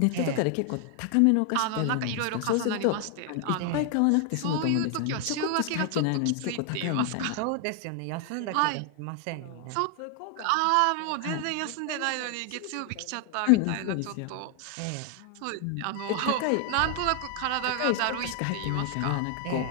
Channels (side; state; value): both; different; correlation 0.00